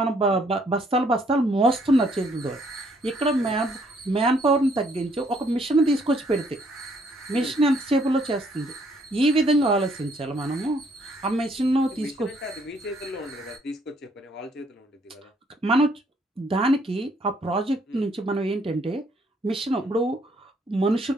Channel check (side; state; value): both; normal; correlation 0.67